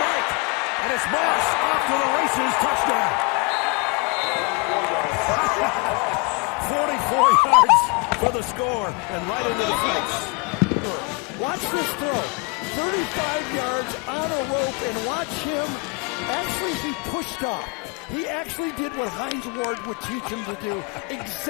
And it's Moss off to the races. Touchdown. 44 yards for the score and right into the face. Watch this throw. 35 yards on a rope, and watch him. Actually, he pushed off. He actually did what Hines Ward would teach him to do.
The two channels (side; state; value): right; quieter; 30.2 dB